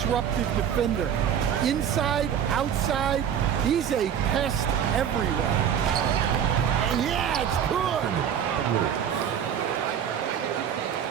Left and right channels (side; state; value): left; quieter; 8.7 dB